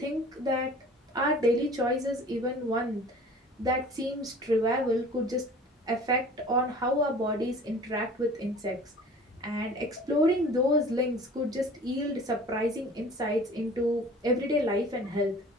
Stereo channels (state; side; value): normal; both; correlation 0.45